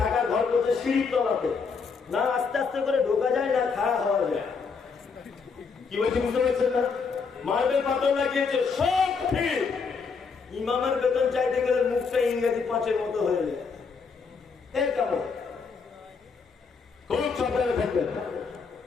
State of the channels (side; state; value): right; quieter; 5.2 dB